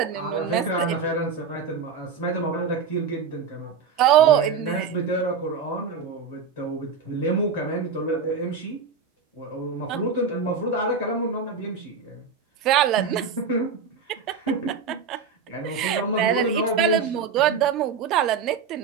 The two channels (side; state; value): left; quieter; 5.8 dB